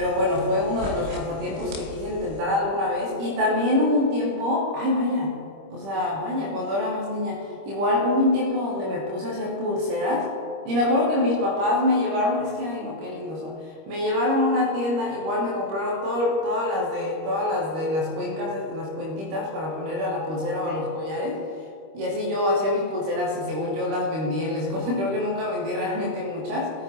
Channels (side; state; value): left; late; 25 ms